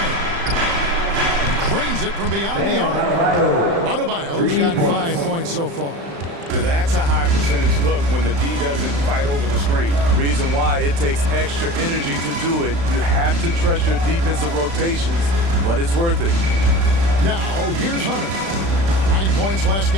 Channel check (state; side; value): late; left; 35 ms